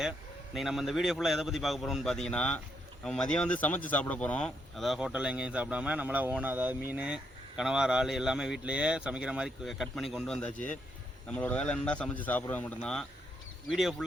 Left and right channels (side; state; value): both; normal; correlation 0.77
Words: இன்றைக்கி நம்ம இந்த வீடியோ ஃபுல்லாக எதை பற்றி பார்க்க போகிறோம்னு பார்த்தீங்கன்னா, நம்ம மதியம் வந்து சமைச்சு சாப்பிட போகிறோம். அதாவது ஹோட்டலில் எங்கேயும் சாப்பிடாம நம்மளாம் ஓனாக, அதாவது மீன், கனவா, இறால் எல்லாமே வீட்டிலையே சமைக்கிற மாதிரி கட் பண்ணி கொண்டு வந்தாச்சு. நம்மளோட வேலை என்னன்னா சமைச்சு சாப்பிட்றது மட்டும்தான். வீடியோ